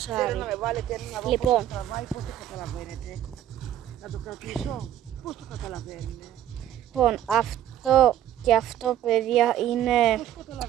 Θέλω να με βάλετε ένα να δω Λοιπόν. πώς το τραβάει, πώς το καταλαβαίνετε. Να το κρατήσω, πώς το καταλαβαίνετε. Λοιπόν, αυτό και αυτό, παιδιά, είναι, Πώς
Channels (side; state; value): left; quieter; 11.6 dB